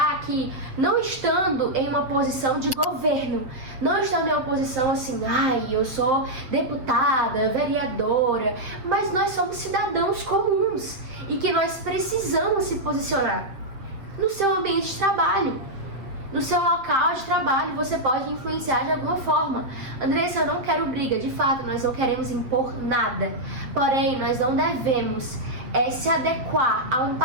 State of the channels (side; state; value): left; late; 7.6 ms